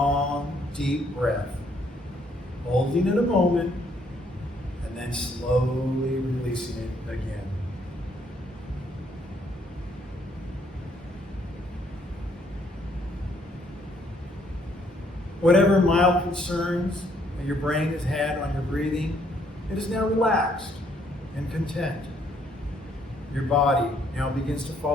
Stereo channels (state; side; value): normal; both; correlation 0.68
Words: deep breath, holding it a moment, and then slowly releasing it again. Whatever mild concerns that your brain has had on your breathing, it is now relaxed and content. Your body now begins to